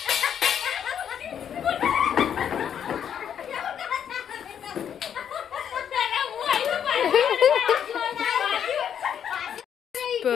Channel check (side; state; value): right; quieter; 8.7 dB